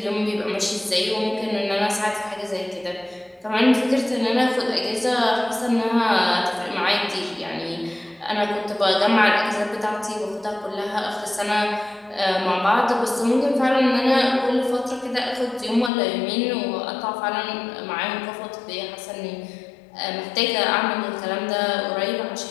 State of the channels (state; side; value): drops out; right; at 15.9 s